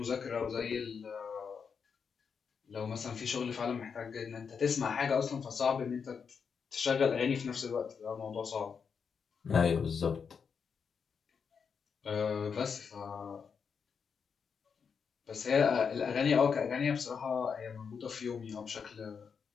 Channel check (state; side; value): quieter; right; 6.2 dB